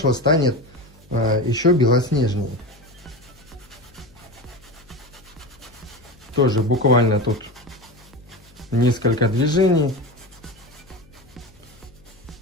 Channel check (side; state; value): left; noise; hum, 27 dB below the sound